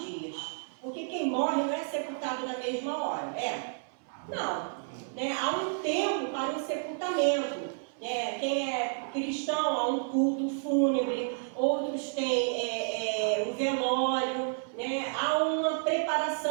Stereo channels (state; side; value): silent; left; 57 dB below the other